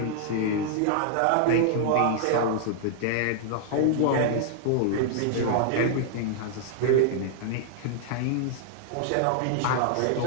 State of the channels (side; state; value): both; different; correlation -0.01